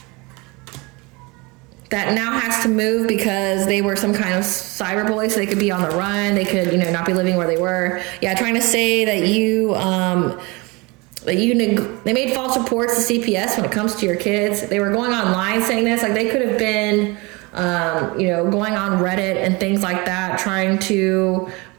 That now has to move because they were some kind of cyberbully, so they could be on the run. They could, not be living where they were. Yeah, trying to say that they made false reports to CPS when it comes to your kids. They were going online saying this, like they could have been, going on Reddit and things like that, trying to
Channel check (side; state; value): left; quieter; 26.1 dB